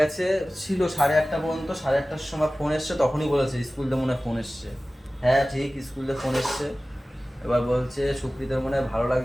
ছিল 8:30 পর্যন্ত। 8:30টার সময় ফোন এসছে, তখনই বলেছে স্কুল থেকে মনে হয় ফোন এসছে। হ্যাঁ ঠিক, স্কুল থেকে ফোন এসছে। এবার বলছে সুপ্রীতার মনে হয় ভালো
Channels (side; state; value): both; normal; correlation 0.97